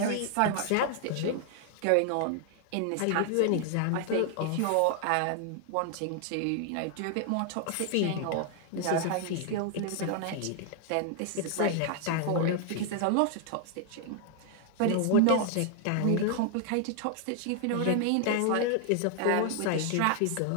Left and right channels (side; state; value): both; different; correlation 0.00